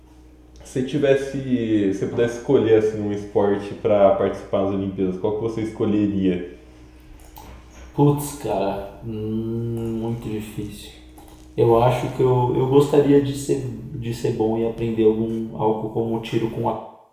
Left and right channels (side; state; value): both; identical; correlation 1.00